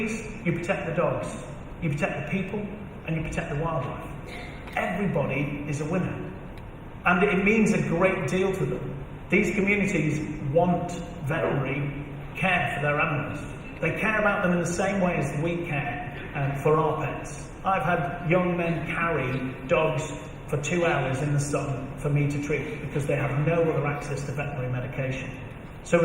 you protect the dogs, you protect the people, and you protect the wildlife. Everybody is a winner. And it means a great deal to them. These communities want veterinary care for their animals. They care about them in the same way as we care for our pets. I've had young men carry dogs for 2 hours in the sun for me to treat because they have no other access to veterinary medication. So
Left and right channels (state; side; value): identical; both; correlation 1.00